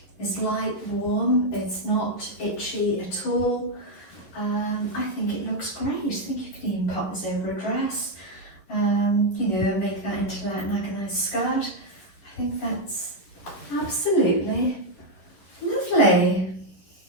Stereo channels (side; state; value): right; late; 10 ms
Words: is light, warm, it's not itchy at all. I think it looks great. I think you can even pop this over a dress, you know, make that into like a nice skirt. I think that's absolutely lovely.